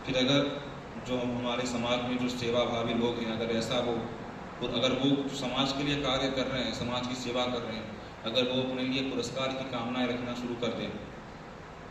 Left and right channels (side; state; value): both; identical; correlation 1.00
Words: फिर अगर जो हमारे समाज में जो सेवा भावी लोग हैं, अगर ऐसा वो और अगर वो समाज के लिए कार्य कर रहे हैं, समाज की सेवा कर रहे हैं, अगर वो अपने लिए पुरस्कार की कामनाएं रखना शुरू कर दें